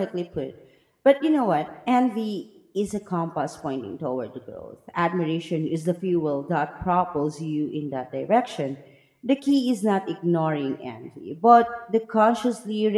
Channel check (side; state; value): both; identical; correlation 1.00